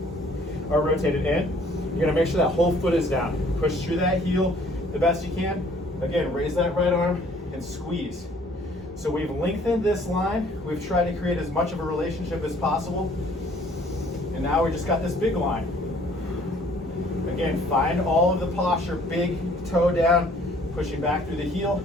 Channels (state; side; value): normal; both; correlation 0.58